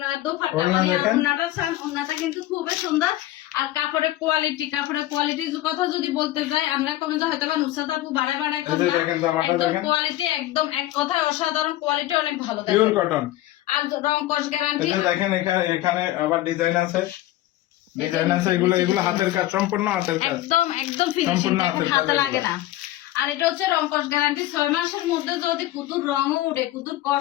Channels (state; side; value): quieter; right; 15.4 dB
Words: দোপাট্টা মানে ওড়নাটা সান ওড়নাটা কিন্তু খুবই সুন্দর আর কাপড়ের কোয়ালিটির কথা যদি বলতে যাই আমরা কমে যে হয়তো নুসরাত আপু বাড়ায় একদম কোয়ালিটি একদম এক কথায় অসাধারণ কোয়ালিটি অনেক ভালো পিওর কটন আর রং কস গ্যারান্টি দেখেন এখানে আবার ডিজাইন আছে এগুলো হাতের কাজ সম্পূর্ণ হাতের কাজ একদম ফিনিশিং হাতে লাগে না আর এটা হচ্ছে রং কস গ্যারান্টি 6 মাসের মধ্যে যদি কুতুর রঙও উঠে কুতুর